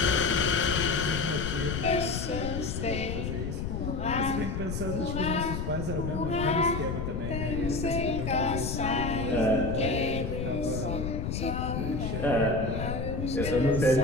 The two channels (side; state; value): left; noise; rumble, 3 dB below the sound